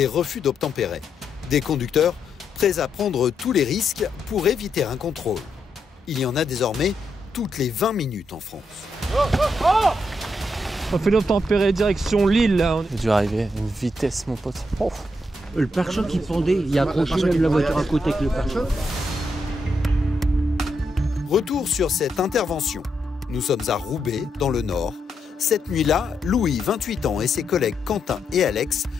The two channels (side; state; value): both; normal; correlation 0.81